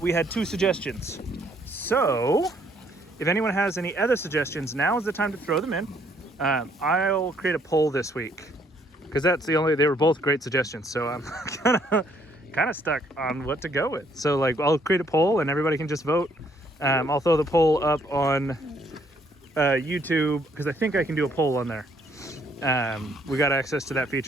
had 2 suggestions. So if anyone has any other suggestions, now is the time to throw them in. I'll create a poll this week, because they were both great suggestions. So I'm kind of stuck on what to go with. So like I'll create a poll and everybody can just vote. I'll throw the poll up on YouTube, because I think I can do a poll on there. We got access to that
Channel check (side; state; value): both; normal; correlation 0.67